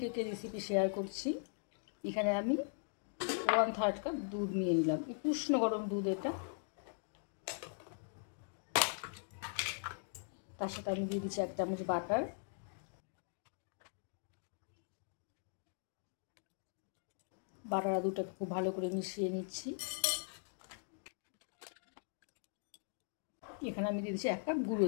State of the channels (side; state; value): right; silent; digital silence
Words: কেকের রেসিপি শেয়ার করছি। এখানে আমি 1/3 কাপ দুধ নিয়ে নিলাম, একটু উষ্ণ গরম দুধ। এটা তার সাথে আমি দিয়ে দিচ্ছি 1 চামচ বাটার। বাটার আর দুধটাকে খুব ভালো করে মিশিয়ে নিচ্ছি। এখানে আমি দিয়ে দিচ্ছি 1 কাপ গুঁড়ো